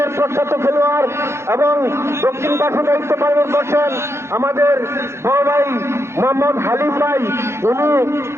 প্রখ্যাত খেলোয়াড়, এবং দক্ষিণ পাশে দায়িত্ব পালন করছেন আমাদের বড় ভাই মোহাম্মদ হালিম ভাই।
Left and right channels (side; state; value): left; late; 0.13 ms